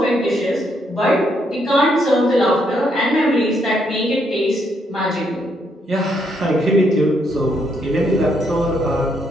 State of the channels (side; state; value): both; normal; correlation 0.75